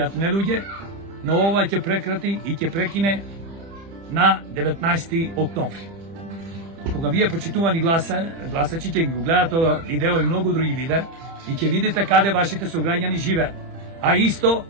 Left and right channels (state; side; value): late; left; 30 ms